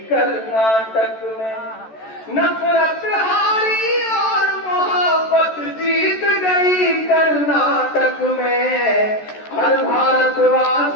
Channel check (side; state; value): right; late; 14 ms